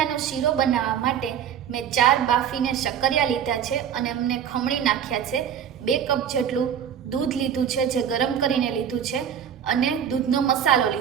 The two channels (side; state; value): left; quieter; 8.7 dB